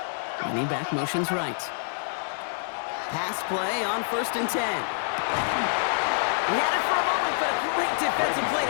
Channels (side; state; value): right; silent; digital silence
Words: Running back motions right. Pass play on 1st and 10. He had it for a moment, but a great defensive play